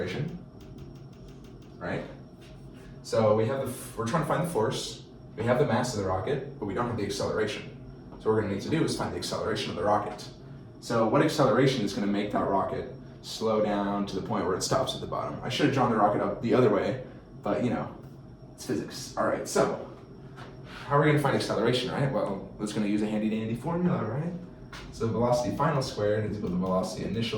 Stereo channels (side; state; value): both; identical; correlation 1.00